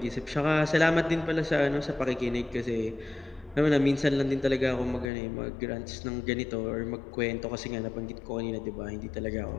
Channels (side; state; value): right; drops out; at 5.1 s